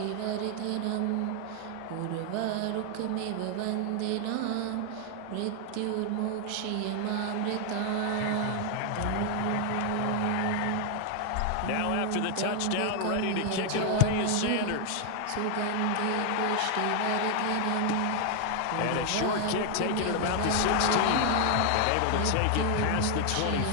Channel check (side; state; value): both; different; correlation 0.00